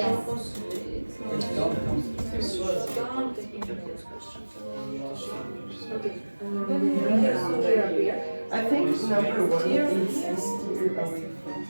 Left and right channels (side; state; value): both; inverted; correlation -1.00